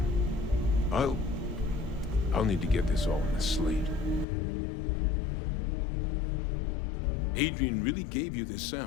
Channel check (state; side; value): drops out; right; at 4.2 s